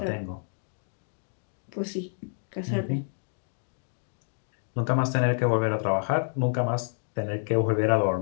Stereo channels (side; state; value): right; silent; digital silence